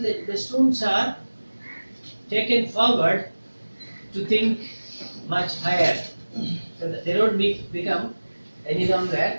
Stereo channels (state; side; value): inverted; both; correlation -1.00